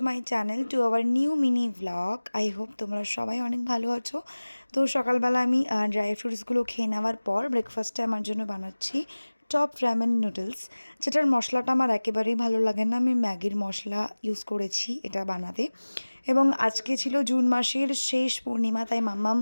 my channel to our new mini vlog. I hope তোমরা সবাই অনেক ভালো আছো। তো সকালবেলা আমি ড্রাই ফ্রুটসগুলো খেয়ে নেওয়ার পর ব্রেকফাস্টে আমার জন্য বানাচ্ছি টপ র্যামেন নুডলস, যেটার মশলাটা আমার একেবারেই ভালো লাগে না। আমি ম্যাগির মশলা ইউজ করেছি এটা বানাতে। এবং আজকে ছিল জুন মাসের শেষ পূর্ণিমা, তাই মাম্মাম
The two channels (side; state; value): both; inverted; correlation -1.00